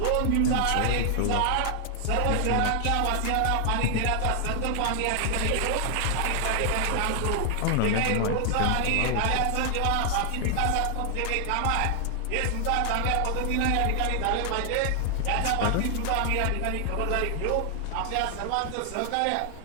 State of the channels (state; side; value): different; both; correlation 0.00